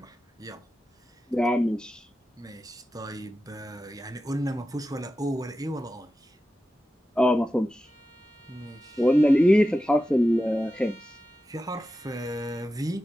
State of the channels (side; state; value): both; normal; correlation 0.93